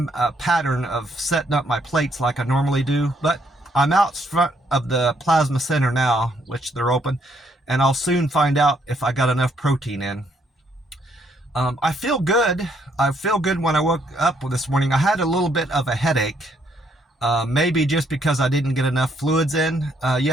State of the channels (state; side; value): normal; both; correlation 0.71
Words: pattern of setting up my plates like I normally do. But I'm out front of the plasma center now, which they're open, and I'll soon find out if I got enough protein in. I feel good. I feel good when I woke up this morning. I had a little bit of a headache, maybe just because I didn't get enough fluids in